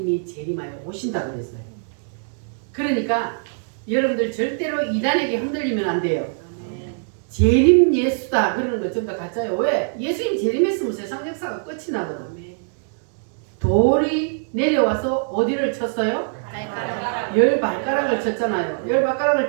재림하여 오신다고 그랬어요. 그러니까 여러분들 절대로 이단에게 흔들리면 안 돼요. 재림 예수다 그러는 거 전부 다 가짜예요. 왜? 예수님 재림했으면 세상 역사가 끝이 나거든. 돌이 내려와서 어디를 쳤어요? 발가락. 10발가락을 쳤잖아요.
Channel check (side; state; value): left; silent; digital silence